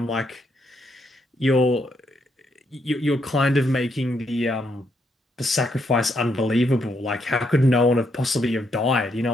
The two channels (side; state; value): both; normal; correlation 0.77